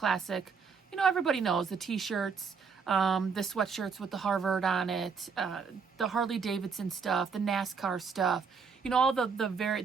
You know, everybody knows the t-shirts, the sweatshirts with the Harvard on it, the Harley Davidson stuff, the NASCAR stuff, you know, all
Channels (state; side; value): quieter; left; 5.7 dB